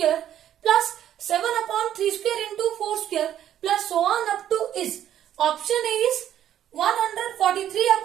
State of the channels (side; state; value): left; quieter; 11.0 dB